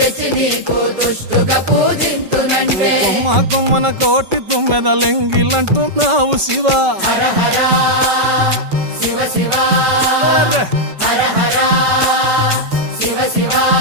కొమ్మ కొమ్మన కోటి తుమ్మెదలెంగిలంటున్నావు శివ.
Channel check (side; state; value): left; late; 5.3 ms